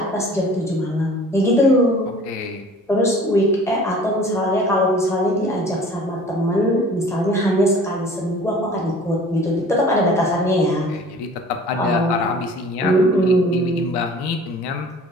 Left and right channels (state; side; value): normal; both; correlation 0.47